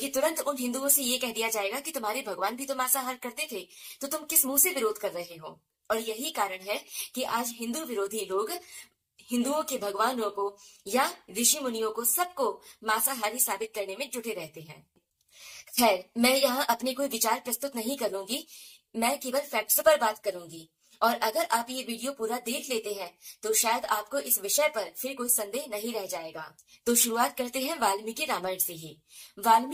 तुरंत उन हिंदुओं से ये कह दिया जाएगा कि तुम्हारे भगवान भी तो मांसाहार करते थे, तो तुम किस मुंह से विरोध कर रहे हो? और यही कारण है कि आज हिंदू विरोधी लोग हिंदुओं के भगवानों को या ऋषि मुनियों को सबको मांसाहारी साबित करने में जुटे रहते हैं। खैर, मैं यहाँ अपने कोई विचार प्रस्तुत नहीं करूंगी, मैं केवल फैक्ट्स पर बात करूंगी। और अगर आप ये वीडियो पूरा देख लेते हैं तो शायद आपको इस विषय पर फिर कोई संदेह नहीं रह जाएगा। तो शुरुआत करते हैं वाल्मीकि रामायण से ही।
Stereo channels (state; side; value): identical; both; correlation 1.00